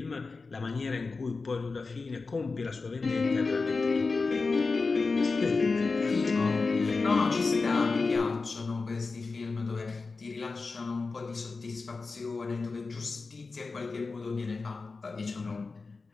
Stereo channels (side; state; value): right; quieter; 4.1 dB